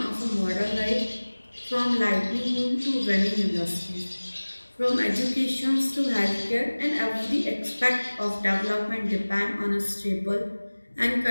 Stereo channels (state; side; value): inverted; both; correlation -1.00